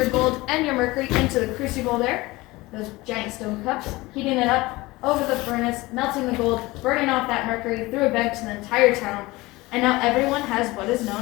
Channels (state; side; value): quieter; right; 20.9 dB